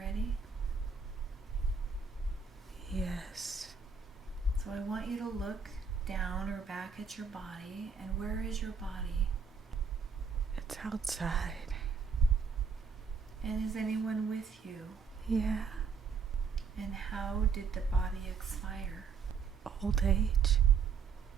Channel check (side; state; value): left; quieter; 5.6 dB